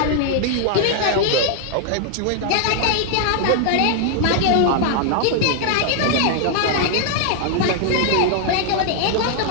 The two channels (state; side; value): different; both; correlation 0.00